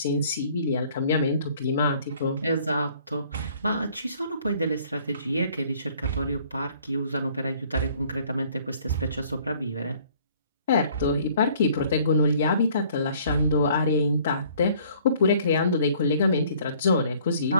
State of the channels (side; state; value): both; inverted; correlation -0.58